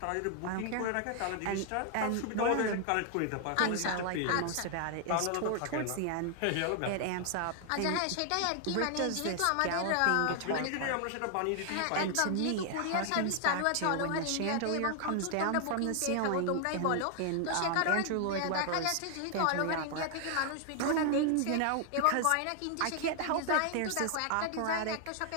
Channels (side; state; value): both; different; correlation 0.00